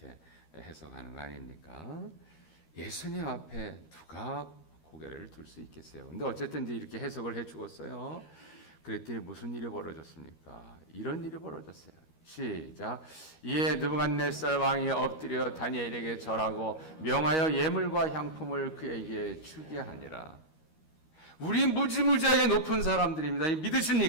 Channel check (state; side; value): late; right; 13 ms